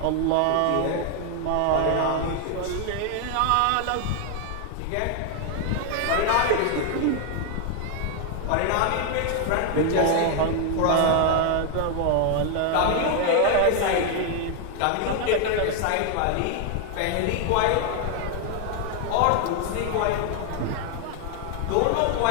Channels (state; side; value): different; both; correlation 0.00